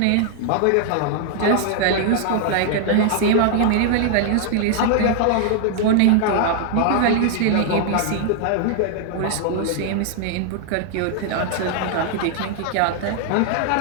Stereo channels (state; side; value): different; both; correlation 0.00